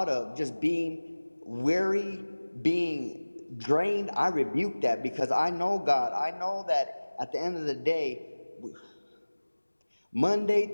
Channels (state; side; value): inverted; both; correlation -1.00